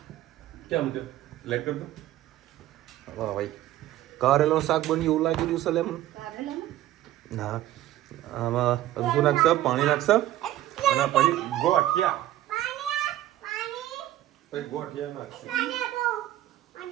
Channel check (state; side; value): quieter; left; 14.0 dB